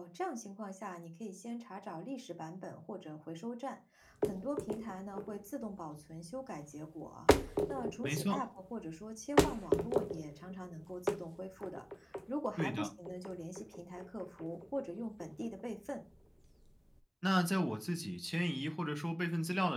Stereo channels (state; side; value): identical; both; correlation 1.00